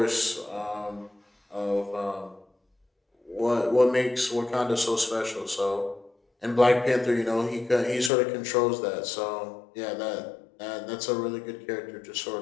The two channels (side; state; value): right; drops out; at 8.1 s